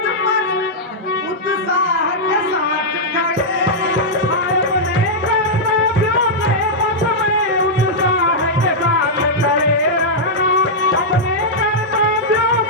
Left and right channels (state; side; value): normal; both; correlation -0.07